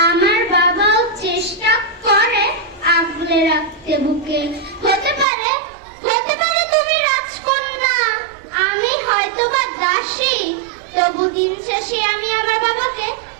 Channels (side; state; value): left; drops out; at 5.2 s